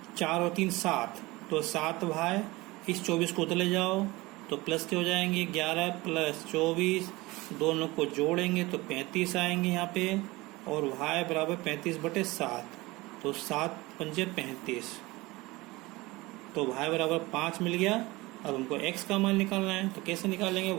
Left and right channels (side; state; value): left; quieter; 21.4 dB